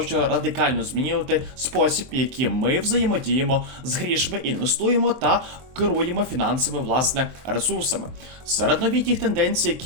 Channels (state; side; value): late; left; 23 ms